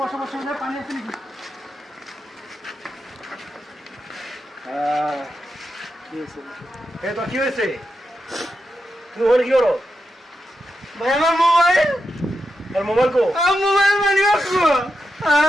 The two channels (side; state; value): both; normal; correlation 0.87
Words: পানি আছে নাকি? কি হয়েছে? তুমি ওখানে কি করো? ভাই আমার মোবাইল। আর মোবাইল কো? মোবাইল মানি